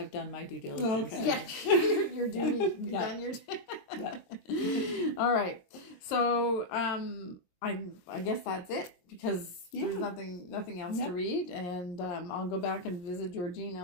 done my due diligence. Okay. Yeah, your duty. You've done your All right. So I guess that's it because there's nothing else to read, and I'll go back and visit Georgina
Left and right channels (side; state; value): right; late; 22 ms